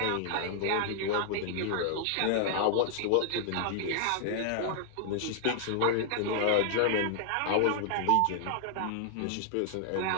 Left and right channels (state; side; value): different; both; correlation 0.00